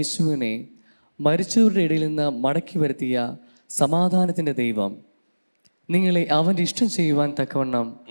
മരിച്ചവരുടെ ഇടയിൽ നിന്ന് മടക്കി വരുത്തിയ സമാധാനത്തിൻ്റെ ദൈവം നിങ്ങളെ അവൻ്റെ ഇഷ്ടം ചെയ്യുവാൻ തക്കവണ്ണം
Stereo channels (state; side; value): inverted; both; correlation -1.00